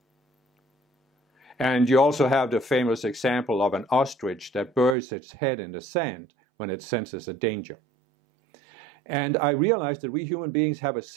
And you also have the famous example of an ostrich that buries its head in the sand when it senses a danger. And I realized that we human beings have a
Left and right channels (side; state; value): left; drops out; at 5.0 s